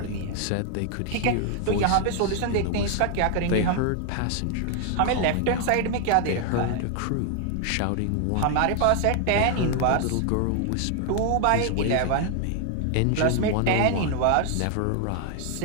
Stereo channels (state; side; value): different; both; correlation 0.00